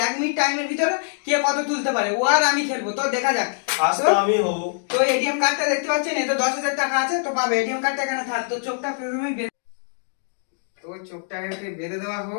1 মিনিট টাইমের ভিতরে কে কত তুলতে পারে, ও আর আমি খেলবো। তো দেখা যাক। তো এটিএম কার্ডটা দেখতে পাচ্ছেন, এতে 10,000 টাকা আছে। তো পাবে এটিএম কার্ডটা এখানে থাক। তো চোখটা প্রথমেই তো চোখটাকে বেঁধে দেওয়া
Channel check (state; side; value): silent; right; digital silence